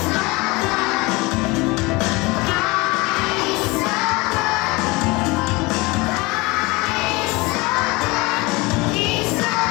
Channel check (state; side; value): quieter; right; 24.1 dB